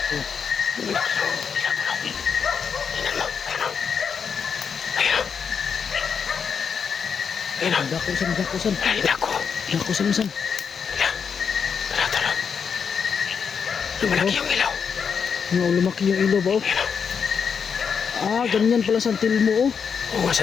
Ayan o. dakusan. Ay, nako. Dakusan. Tara, tara. Lumalaki yung ilaw. Ano, lumaki yung ilaw ba? Oh? Ah, ganyan pala santil mo. Oh. Oo nga,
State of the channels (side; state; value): right; quieter; 6.5 dB